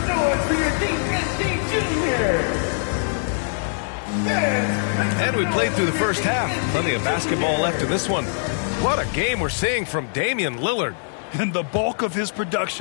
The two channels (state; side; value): silent; right; digital silence